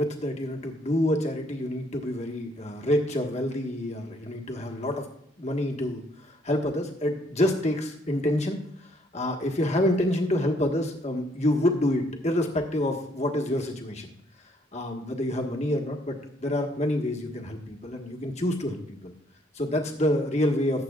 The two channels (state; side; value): normal; both; correlation 0.67